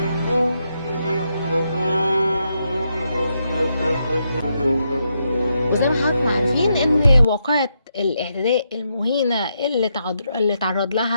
وزي ما حضراتكم عارفين ان واقعة الاعتداء المهينة اللي تعرض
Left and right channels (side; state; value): both; inverted; correlation -0.81